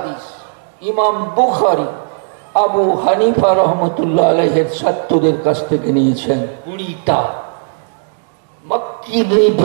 ইমাম বুখারী আবু হানিফা রহমতুল্লাহ আলাইহির ছাত্রদের কাছ থেকে নিয়েছেন। 20টা। মক্কি ইবনে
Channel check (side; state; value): left; silent; digital silence